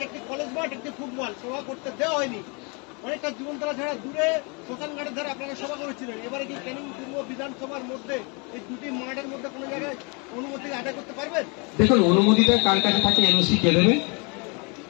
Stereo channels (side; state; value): right; quieter; 32.3 dB